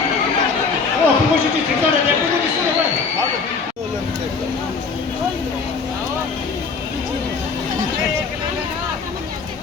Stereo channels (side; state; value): right; quieter; 4.9 dB